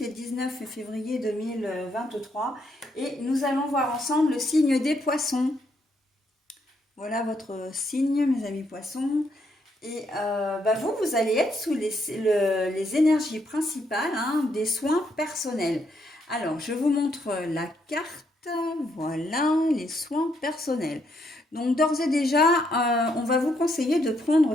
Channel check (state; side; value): normal; both; correlation 0.75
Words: et 19 février 2023. Et nous allons voir ensemble le signe des poissons. Voilà votre signe, mes amis poissons. Et vous allez être sous les énergies principales des soins personnels. Alors, je vous montre la carte. Voilà, les soins personnels. Donc, d'ores et déjà, on va vous conseiller de